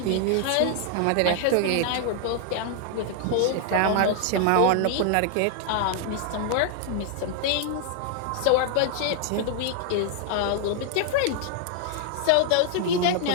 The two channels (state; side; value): different; both; correlation 0.00